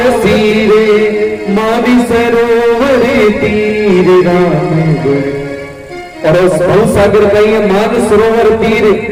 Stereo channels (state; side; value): identical; both; correlation 1.00